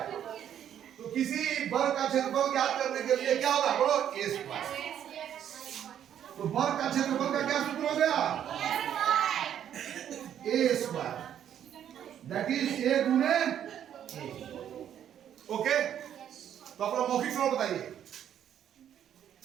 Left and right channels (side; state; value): left; quieter; 9.9 dB